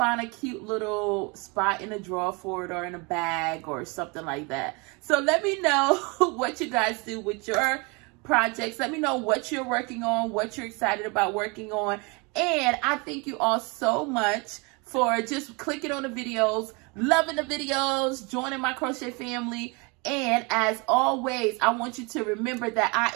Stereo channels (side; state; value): left; quieter; 29.5 dB